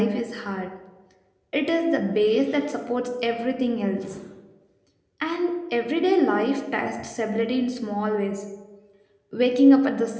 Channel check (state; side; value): identical; both; correlation 1.00